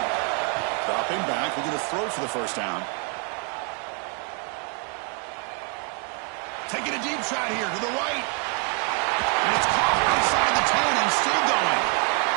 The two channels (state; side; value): quieter; left; 37.5 dB